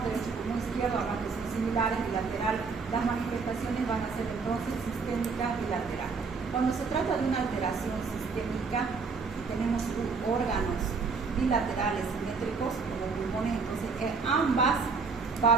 derecho y pulmón izquierdo, ambas que son similares, bilateral, las manifestaciones van a ser entonces sistémicas bilaterales. Cuando se trata de una alteración sistémica, tenemos órganos bilaterales simétricos como pulmones, entonces en ambas va a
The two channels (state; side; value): quieter; left; 4.8 dB